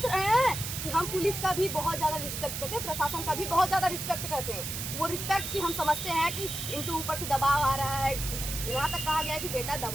रहे हैं कि हम पुलिस का भी बहुत ज़्यादा रिस्पेक्ट करते हैं, प्रशासन का भी बहुत ज़्यादा रिस्पेक्ट करते हैं। वो रिस्पेक्ट की हम समझते हैं कि इनके ऊपर से दबाव आ रहा है। यहाँ तक कहा गया है कि बेटा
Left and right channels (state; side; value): noise; right; hiss, 5 dB below the sound